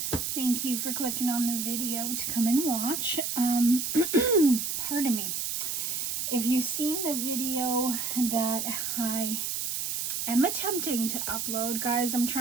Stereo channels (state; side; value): noise; right; hiss, 2 dB below the sound